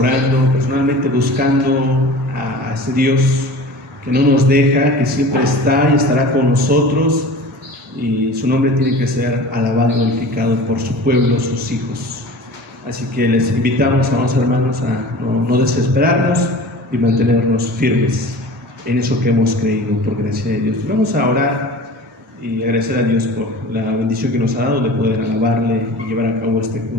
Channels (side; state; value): both; normal; correlation 0.38